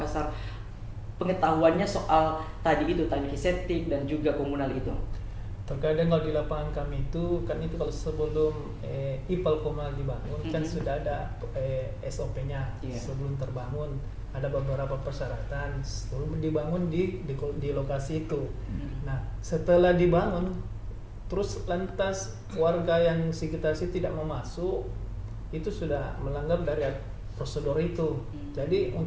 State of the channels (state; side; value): identical; both; correlation 1.00